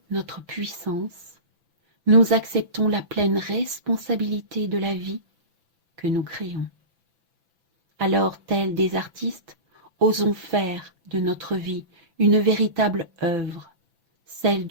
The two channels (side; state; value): left; late; 6.0 ms